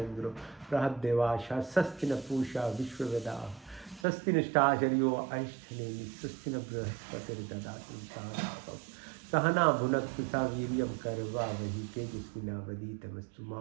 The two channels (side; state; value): left; drops out; at 4.0 s